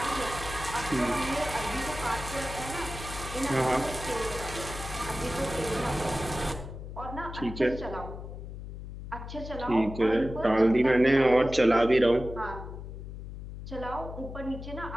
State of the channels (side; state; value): left; noise; hum, 10 dB below the sound